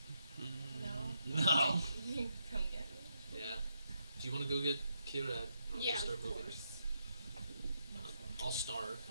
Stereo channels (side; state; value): both; inverted; correlation -0.80